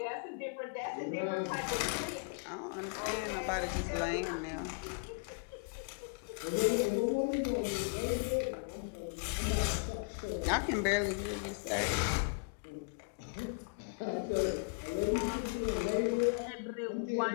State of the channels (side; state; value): right; quieter; 39.5 dB